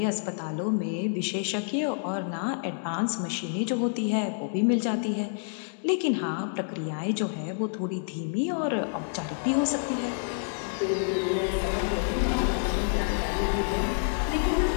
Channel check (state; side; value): silent; right; digital silence